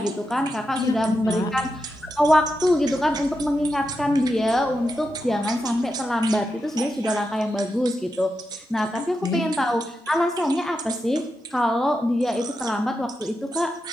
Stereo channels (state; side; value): normal; both; correlation 0.87